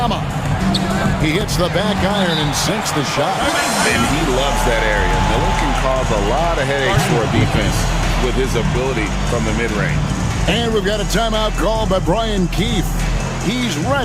He hits the back iron and sinks the shot. And he loves that area. Miller can cause a lot of headaches for a defense with his ability from the mid-range. And we've got a timeout call by Brian Keefe. He's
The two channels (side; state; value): both; identical; correlation 1.00